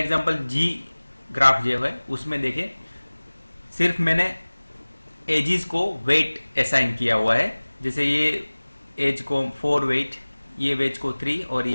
जी ग्राफ जो है उसमें देखिए सिर्फ मैंने एजिस को वेट असाइन किया हुआ है। जैसे ये एज को 4 वेट, ये वेज को 3 और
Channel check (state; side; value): inverted; both; correlation -1.00